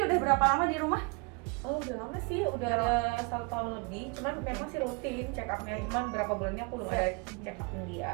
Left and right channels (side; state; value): left; quieter; 31.6 dB